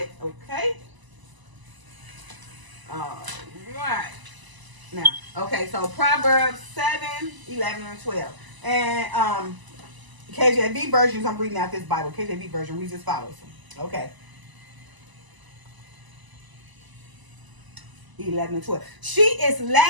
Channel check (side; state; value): left; late; 1.0 ms